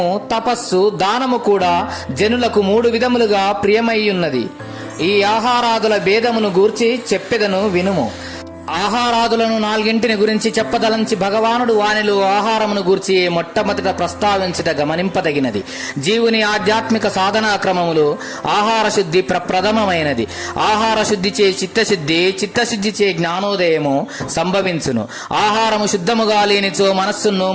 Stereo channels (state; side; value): identical; both; correlation 1.00